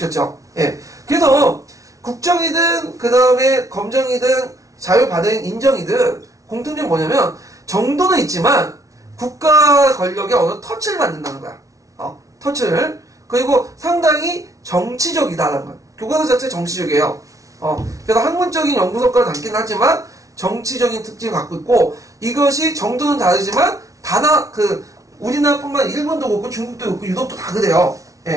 예. 그래서 국정이든 그 다음에 검정이든 자율 발행 인정이든 공통점이 뭐냐면 정도는 있지만 국가 권력에 어느 터치를 받는다는 거야. 터치를. 그리고 상당히 정치적이다라는 거야. 교과서 자체 정치적이에요. 그래서 학문적인 연구 성과를 담긴 하지만 정치적인 특징을 갖고 있고, 이것이 정도는 다르지만 우리나라뿐만 아니라 일본도 그렇고 중국도 그렇고 유럽도 다 그래요.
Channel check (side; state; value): left; late; 0.16 ms